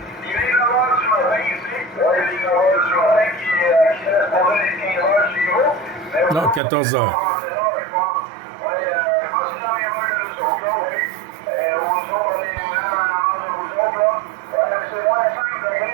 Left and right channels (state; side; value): drops out; left; at 6.6 s